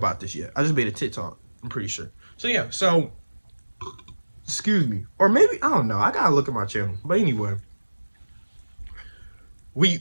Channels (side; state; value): both; inverted; correlation -1.00